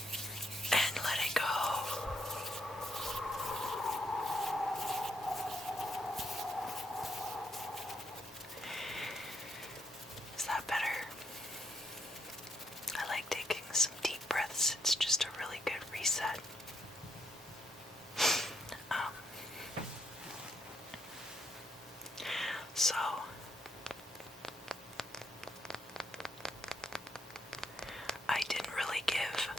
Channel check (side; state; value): both; normal; correlation 0.76